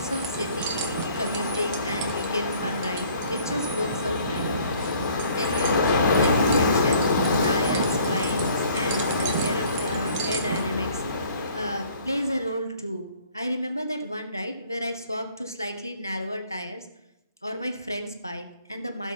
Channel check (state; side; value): inverted; both; correlation -0.57